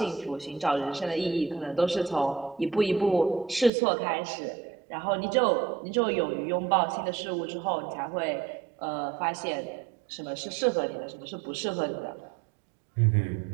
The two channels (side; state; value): left; drops out; at 3.7 s